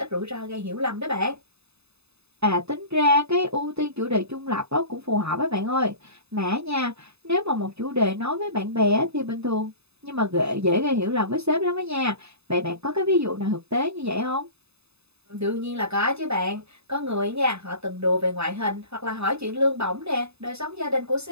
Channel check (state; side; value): late; left; 0.79 ms